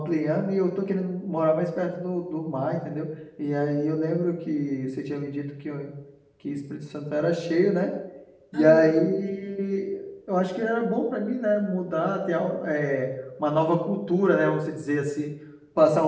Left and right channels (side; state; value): both; identical; correlation 1.00